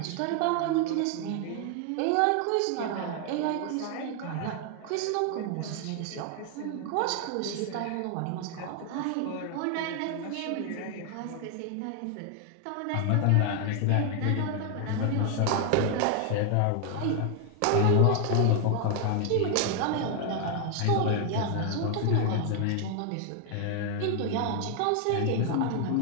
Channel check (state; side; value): different; both; correlation 0.00